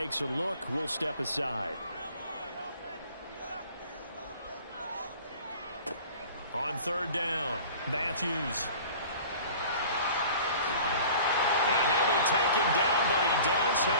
a look, we'll step aside. On 3rd down, Matthews. And he'll be taken down, but he does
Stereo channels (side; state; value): both; inverted; correlation -0.44